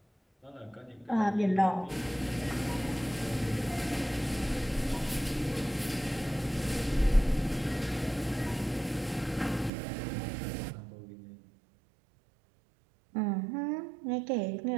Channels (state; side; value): drops out; left; at 9.7 s